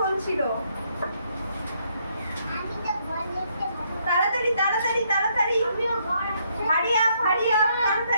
বলছিল। তাড়াতাড়ি তাড়াতাড়ি তাড়াতাড়ি, হারি আপ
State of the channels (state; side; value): inverted; both; correlation -0.72